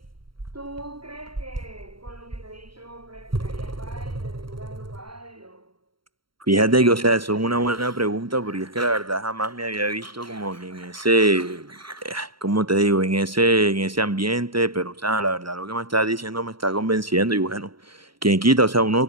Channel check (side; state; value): left; late; 0.74 ms